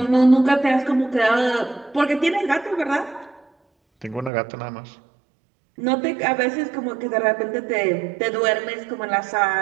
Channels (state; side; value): drops out; left; at 4.3 s